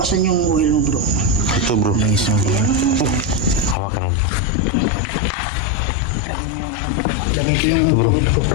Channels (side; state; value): right; drops out; at 3.8 s